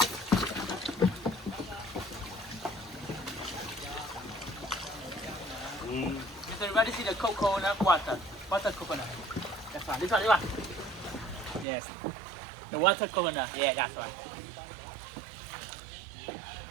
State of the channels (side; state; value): left; drops out; at 11.7 s